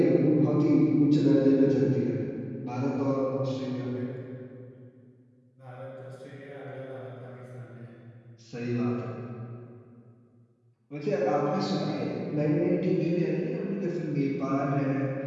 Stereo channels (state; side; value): identical; both; correlation 1.00